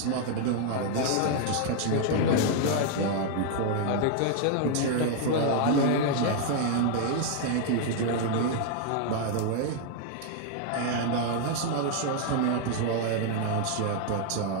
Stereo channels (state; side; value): different; both; correlation 0.00